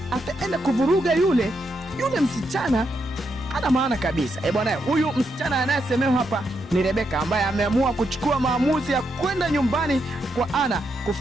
ataenda kuvuruga yule msichana. Ana maana kabisa. Bwana, huyu msichana anayesemewa hapa ni Rebeka, ambaye ameamua kuchukua maamuzi ya kwenda nyumbani kwa Ana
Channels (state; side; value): normal; both; correlation 0.81